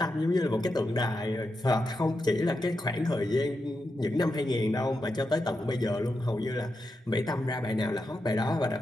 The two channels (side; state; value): both; normal; correlation 0.87